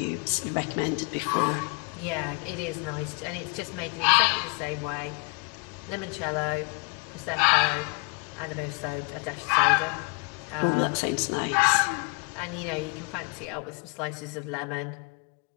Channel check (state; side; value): quieter; right; 31.3 dB